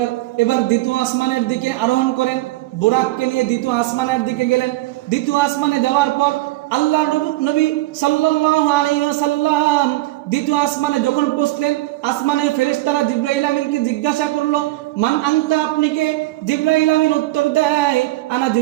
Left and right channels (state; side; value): quieter; left; 18.3 dB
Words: এবার দ্বিতীয় আসমানের দিকে আরোহণ করেন, বুরাককে নিয়ে দ্বিতীয় আসমানের দিকে গেলেন। দ্বিতীয় আসমানে যাওয়ার পর আল্লাহ নবী সাল্লাল্লাহু আলাইহি ওয়াসাল্লাম দ্বিতীয় আসমানে যখন পৌঁছলেন, আসমানের ফেরেশতারা জিবরাইল আমিনকে জিজ্ঞাসা করলো, মান আনতা, আপনি কে? জিবরাইল আমিন উত্তর দেয়, আনা